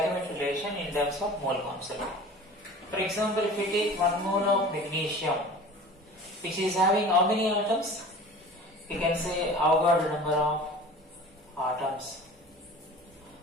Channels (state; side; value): normal; both; correlation 0.40